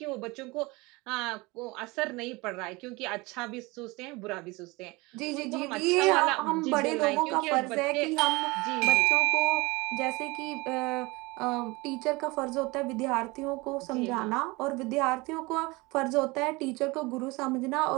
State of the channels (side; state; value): left; quieter; 24.0 dB